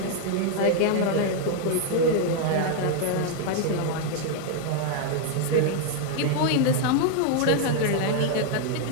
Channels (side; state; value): both; different; correlation 0.00